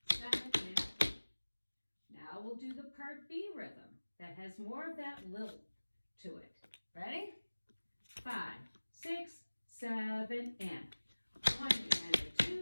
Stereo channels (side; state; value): both; inverted; correlation -1.00